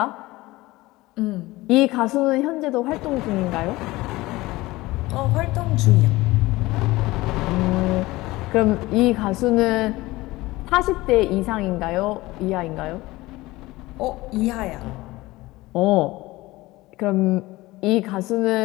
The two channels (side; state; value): right; quieter; 19.6 dB